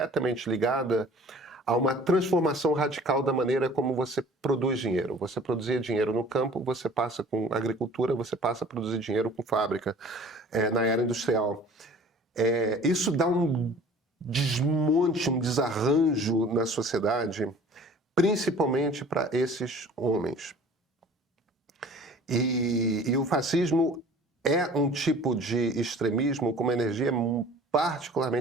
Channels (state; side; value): normal; both; correlation 0.47